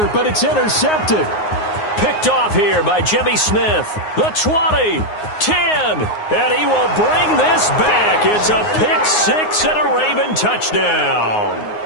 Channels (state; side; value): late; right; 9.6 ms